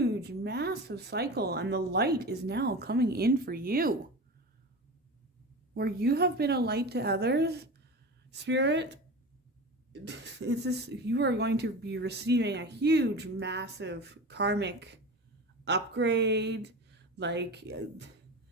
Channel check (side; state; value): both; normal; correlation 0.29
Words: massive cycle, and the light is now coming in for you. Where you have been a light to others, Spirit, it's this, you are going to be receiving a huge, massive karmic upgrade, like...